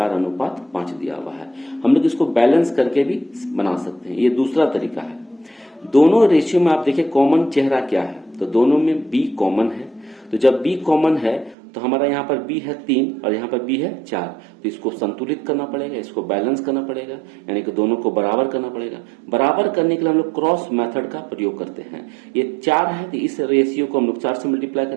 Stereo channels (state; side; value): drops out; left; at 11.6 s